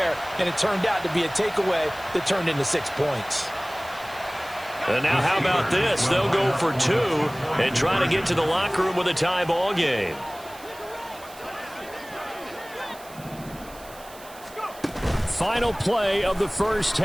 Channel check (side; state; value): right; noise; hiss, 20 dB below the sound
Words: and it turned out to be a takeaway that turned into 6 points. And now how about this? They'll go for 2 and try to get to the locker room with a tie ball game. Final play of the first